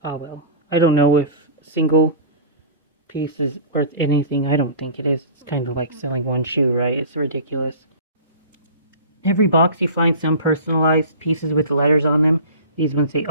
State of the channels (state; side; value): inverted; both; correlation -0.38